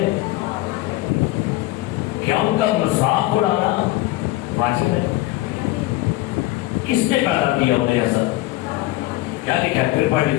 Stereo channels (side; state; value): right; quieter; 17.5 dB